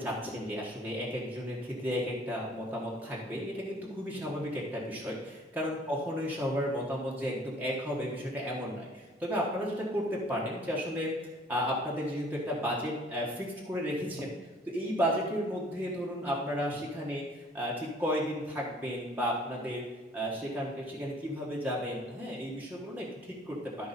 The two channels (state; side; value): normal; both; correlation 0.55